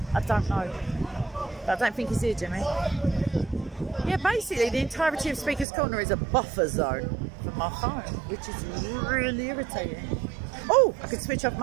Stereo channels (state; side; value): drops out; left; at 5.7 s